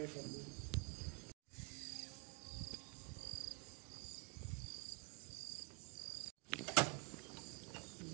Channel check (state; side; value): quieter; left; 32.4 dB